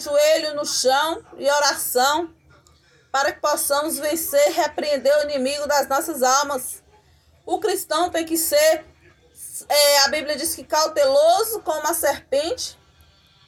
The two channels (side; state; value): both; identical; correlation 1.00